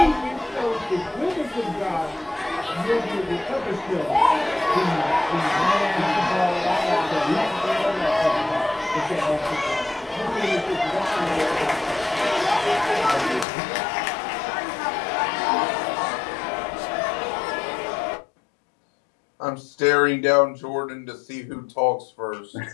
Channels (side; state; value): right; drops out; at 13.5 s